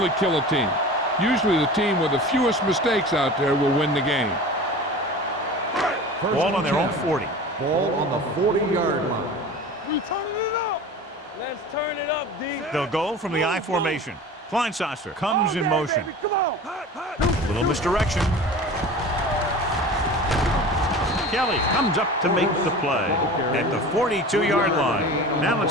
kill a team. Usually the team with the fewest mistakes out there will win the game. Ball on their own 40. Ball on the 40-yard line. We turning it up. Let's turn it up, D. They'll go from the I formation. Kleinsasser comes in motion. Baby. Come on. A little misdirection. Kelly comes up to make the play at the 42-yard line. Now let's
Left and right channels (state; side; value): normal; both; correlation 0.36